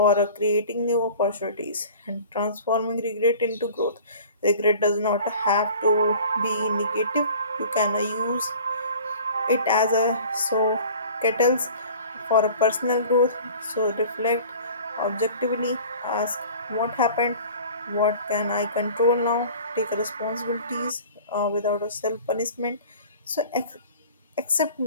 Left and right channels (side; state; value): both; inverted; correlation -0.44